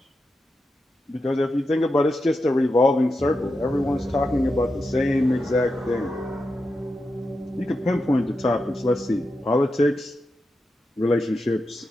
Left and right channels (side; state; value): both; normal; correlation 0.88